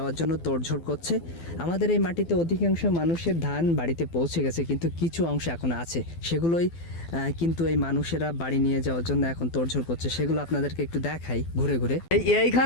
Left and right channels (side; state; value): right; late; 12 ms